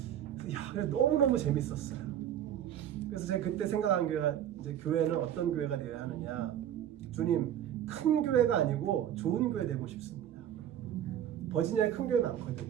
너무너무 재밌었어요. 그래서 제가 그때 생각한 교회가, 이제 교회는 어떤 교회가 되어야 하느냐. 주님, 큰 교회가 아니고 좋은 교회 되고 싶습니다. 버지니아에 큰 교회 많거든요.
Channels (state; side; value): quieter; left; 10.4 dB